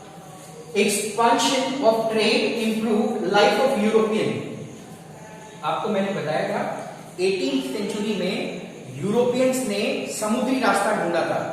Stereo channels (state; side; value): identical; both; correlation 1.00